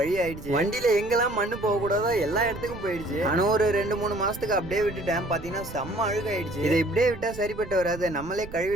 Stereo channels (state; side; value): noise; right; rumble, 14 dB below the sound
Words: ஆயிடுச்சு. வண்டியில எங்கெல்லாம் மண்ணு போகக்கூடாதோ எல்லா இடத்துக்கும் போயிடுச்சு. ஆனா ஒரு 2-3 மாசத்துக்கு அப்படியே விட்டுட்டேன். பார்த்தீங்கன்னா செம்ம அழுகாயிடுச்சு. இதை இப்படியே விட்டா சரிப்பட்டு வராது, நம்மளே